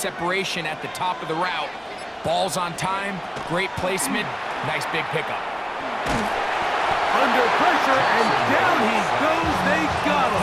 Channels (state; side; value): identical; both; correlation 1.00